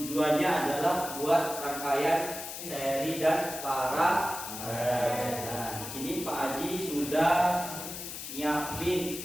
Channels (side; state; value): left; noise; hiss, 8 dB below the sound